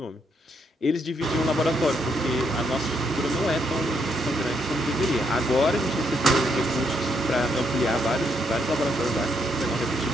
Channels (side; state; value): both; normal; correlation 0.75